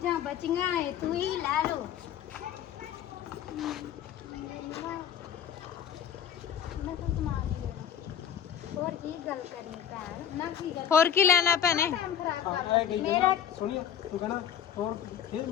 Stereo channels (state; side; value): quieter; right; 9.1 dB